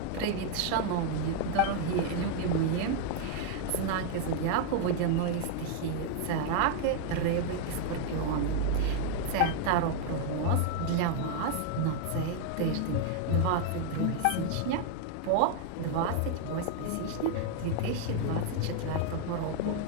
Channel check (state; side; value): different; both; correlation 0.00